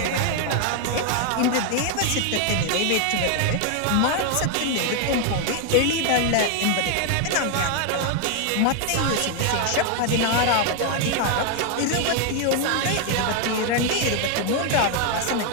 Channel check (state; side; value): different; both; correlation 0.00